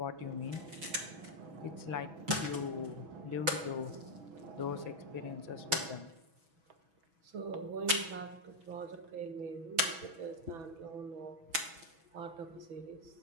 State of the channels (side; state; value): left; late; 6.1 ms